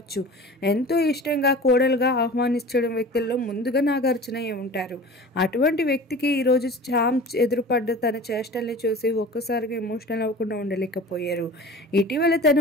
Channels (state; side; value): normal; both; correlation 0.38